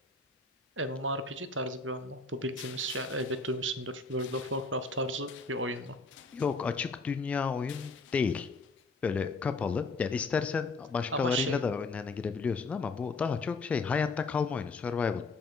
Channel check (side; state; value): right; quieter; 3.5 dB